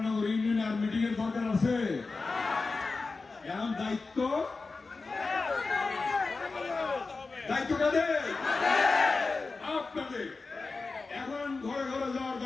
ইউনিয়নে আর মিটিং এর দরকার আছে? এখন দায়িত্ব দায়িত্ব কাদের? আপনাদের। এখন ঘরে ঘরে যাওয়ার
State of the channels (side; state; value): right; quieter; 4.0 dB